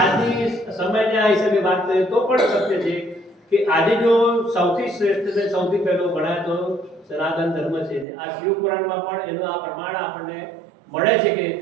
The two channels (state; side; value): drops out; left; at 8.1 s